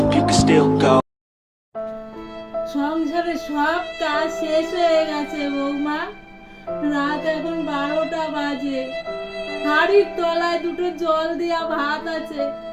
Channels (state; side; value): identical; both; correlation 1.00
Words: you can still go. সংসারে সব কাজ শেষ হয়ে গেছে বৌমা, রাত এখন 12টা বাজে, হাড়ির তলায় দুটো জল দেয়া ভাত আছে,